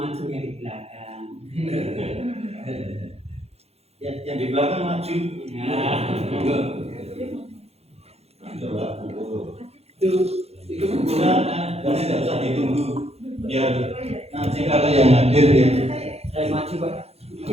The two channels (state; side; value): late; left; 0.30 ms